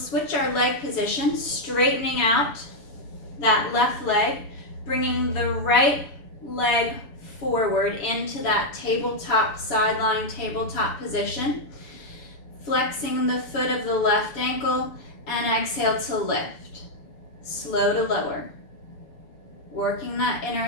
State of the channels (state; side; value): late; right; 7.0 ms